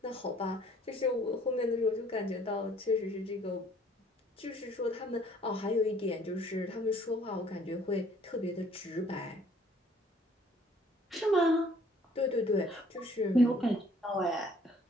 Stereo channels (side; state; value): both; normal; correlation 0.59